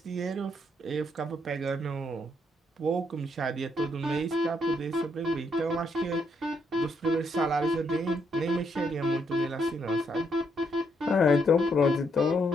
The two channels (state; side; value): normal; both; correlation 0.75